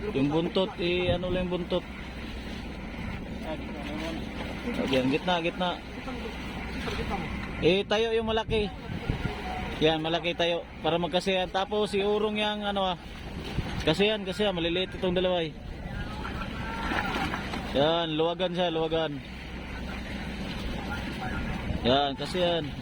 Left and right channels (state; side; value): identical; both; correlation 1.00